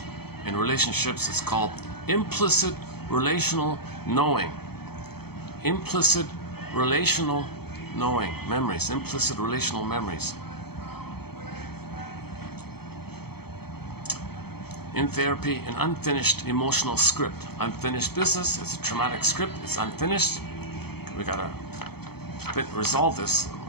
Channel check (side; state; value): right; late; 0.96 ms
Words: In relationships, it's called implicit relational knowing. Implicit relational knowing memories, implicit relational memories. In therapy, an unfinished emotional script. Unfinished business, it's a traumatic script, it's unfinished. We gotta resolve this